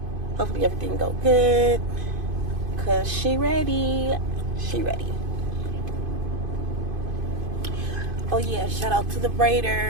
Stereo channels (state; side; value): late; left; 2.5 ms